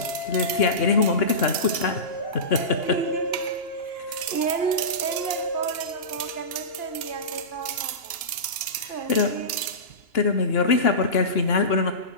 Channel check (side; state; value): right; late; 2.9 ms